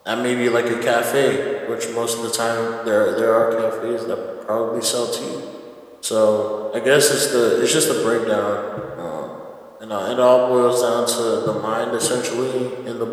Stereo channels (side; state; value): both; identical; correlation 1.00